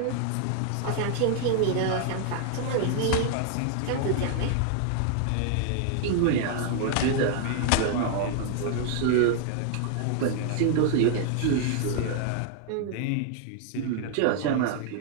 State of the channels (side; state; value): both; different; correlation 0.00